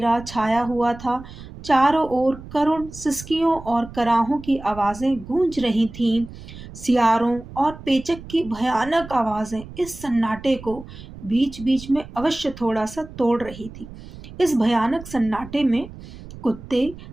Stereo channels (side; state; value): right; noise; rumble, 15 dB below the sound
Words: छाया हुआ था। चारों ओर करुण सिसकियों और कराहों की आवाजें गूंज रही थीं। सियारों और पेचक की भयानक आवाजें इस सन्नाटे को बीच बीच में अवश्य थोड़ा सा तोड़ रही थी। इस भयानक सन्नाटे में कुत्ते